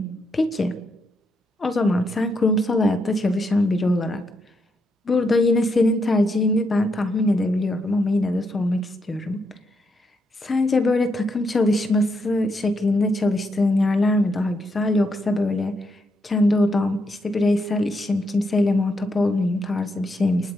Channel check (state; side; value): normal; both; correlation 0.80